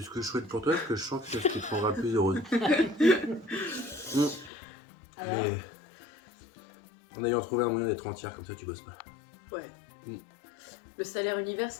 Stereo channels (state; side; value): drops out; right; at 4.5 s